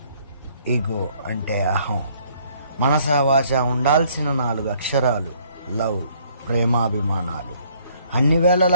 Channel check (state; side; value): inverted; both; correlation -0.62